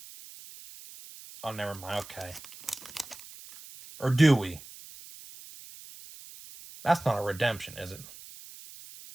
Oh, never mind. Okay. Or do we? That's not a redemption, is it?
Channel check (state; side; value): noise; right; hiss, 17 dB below the sound